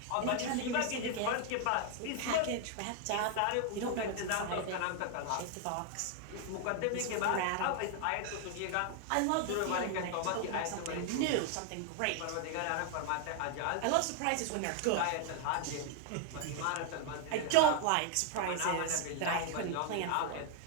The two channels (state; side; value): different; both; correlation 0.00